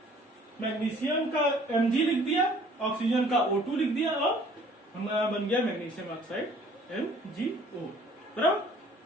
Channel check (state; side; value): normal; both; correlation 0.55